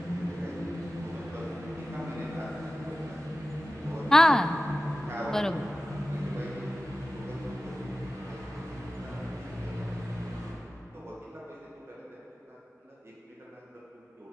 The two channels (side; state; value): both; normal; correlation 0.95